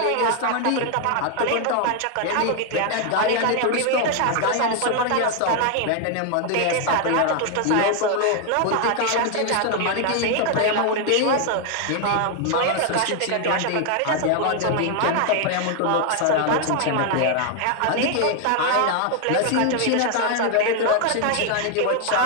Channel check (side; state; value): both; different; correlation 0.00